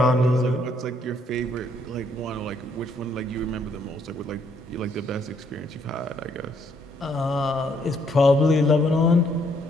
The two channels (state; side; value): normal; both; correlation 0.69